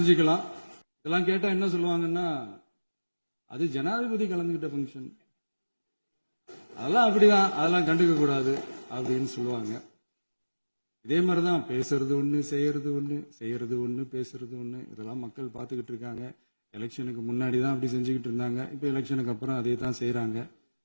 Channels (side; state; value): both; inverted; correlation -1.00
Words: இதெல்லாம் கேட்டா என்ன சொல்லுவாங்கன்னா, அது ஜனாதிபதி கலந்துகிட்ட பங்கன், அதெல்லாம் அப்படிதான், அதெல்லாம் கண்டுக்க கூடாது அப்படின்னு சொல்லுவாங்க. இதே மாதிரிதான் பேசுறது ஒண்ணு, செய்யறது ஒண்ணு, செய்யறது ஒண்ணு, பேசுறது ஒண்ணு. இதெல்லாம் மக்கள் பார்த்துக்கிட்டு இருக்காங்க. எலெக்ஷனுக்கு முன்னாடி தான் அப்படி செஞ்சுக்கிட்டு இருந்தாங்க, இப்ப எலெக்ஷனுக்கு அப்புறம் அதே தான் செய்யறாங்க.